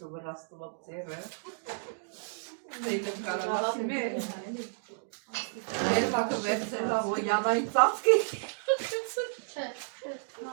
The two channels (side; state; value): left; silent; digital silence